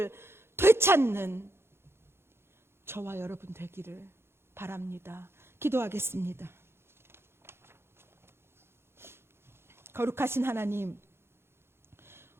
되찾는 저와 여러분 되기를 바랍니다. 기도하겠습니다. 거룩하신 하나님,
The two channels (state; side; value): late; left; 0.12 ms